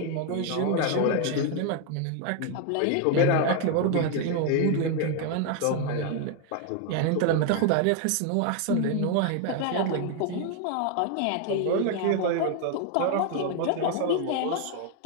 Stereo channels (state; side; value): different; both; correlation 0.01